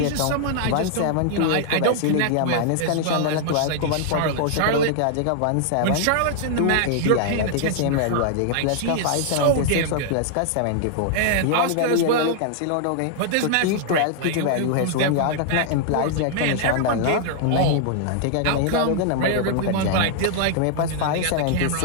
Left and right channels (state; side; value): different; both; correlation -0.01